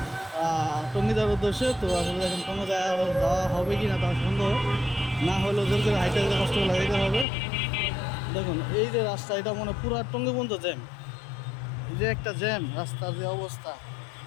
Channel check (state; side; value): drops out; right; at 7.2 s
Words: টঙ্গিদার উদ্দেশ্যে। তো আসলে দেখেন কোনো যাওয়া হবে কি না তার সন্দেহ, না হলেও জোর করে হাইটে যেতে কষ্ট লাগাইতে হবে। দেখুন এই যে রাস্তা, এটা মনে পুরো টঙ্গি পর্যন্ত জ্যাম। এই যে একটা জ্যাম, রাস্তার যে অবস্থা,